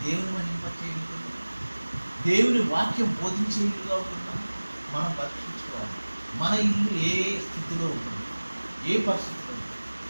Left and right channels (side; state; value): both; inverted; correlation -1.00